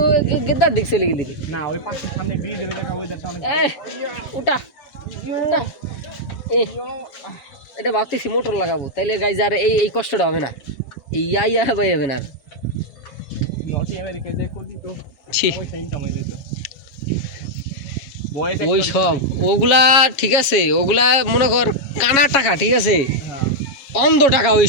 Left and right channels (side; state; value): right; late; 7.3 ms